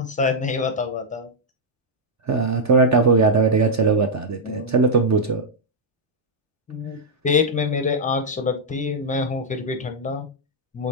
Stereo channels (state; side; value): normal; both; correlation -0.05